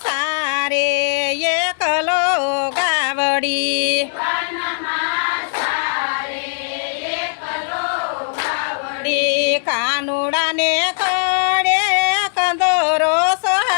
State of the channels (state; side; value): silent; right; digital silence